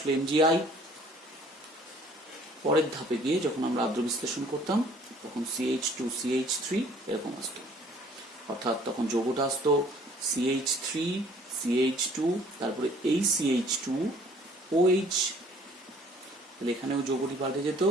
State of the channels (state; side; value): normal; both; correlation 0.56